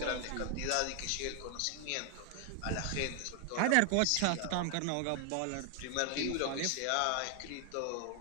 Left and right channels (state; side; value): different; both; correlation 0.00